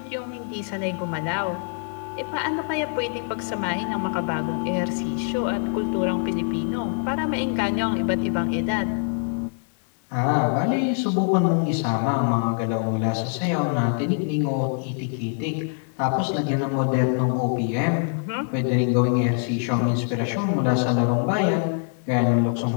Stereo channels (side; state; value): right; silent; 62 dB below the other